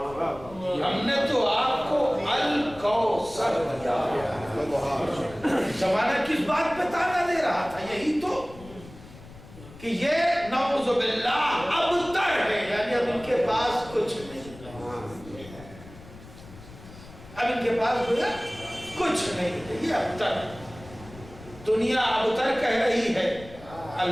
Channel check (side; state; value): left; noise; rumble, 18 dB below the sound